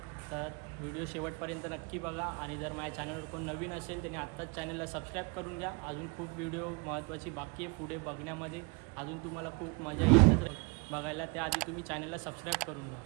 तर व्हिडिओ शेवटपर्यंत नक्की बघा. आणि जर माझ्या चॅनलवर कोण नवीन असेल त्याने आत्ताच चॅनलला सबस्क्राईब करून घ्या. अजून खूप व्हिडिओ महत्त्वाची बाकी आहे पुढे बघण्यामध्ये. अजून तुम्हाला खूप मजा येईल बघायला. त्याआधी तुम्ही चॅनलला सबस्क्राईब करून घ्या.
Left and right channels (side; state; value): left; quieter; 31.6 dB